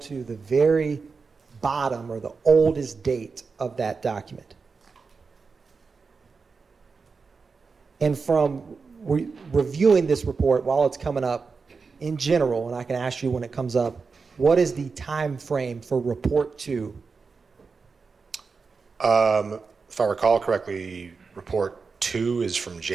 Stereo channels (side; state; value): left; quieter; 4.8 dB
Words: the very bottom or the oldest date of that document. And from reviewing this report while it's coming up in general, and I can ask you when it comes up, what is the time frame for report 2? If I recall correctly, report 2 is from